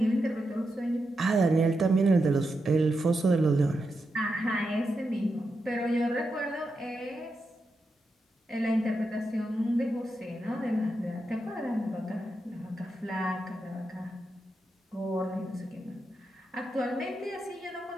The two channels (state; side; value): normal; both; correlation 0.86